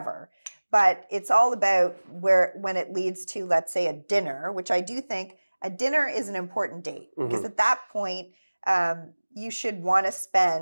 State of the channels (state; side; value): inverted; both; correlation -1.00